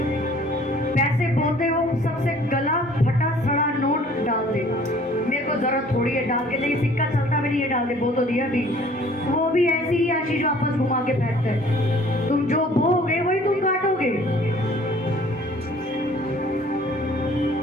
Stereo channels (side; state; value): both; normal; correlation 0.54